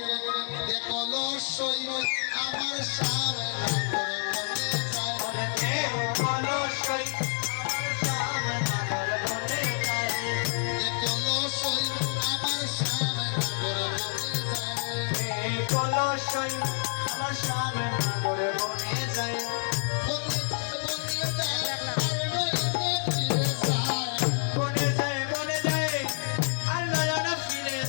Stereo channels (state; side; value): silent; right; 59 dB below the other